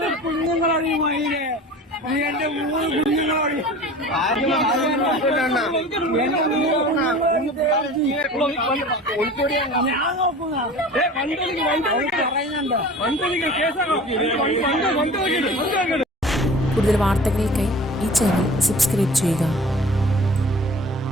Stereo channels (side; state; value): both; normal; correlation 0.41